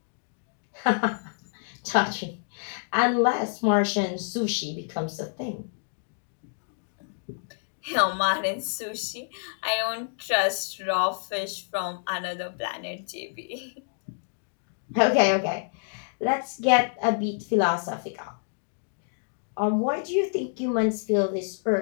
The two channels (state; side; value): silent; right; digital silence